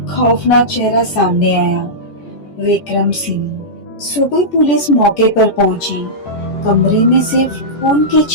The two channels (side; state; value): right; late; 14 ms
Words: खौफनाक चेहरा सामने आया, विक्रम सिंह। सुबह पुलिस मौके पर पहुंची। कमरे में सिर्फ खून के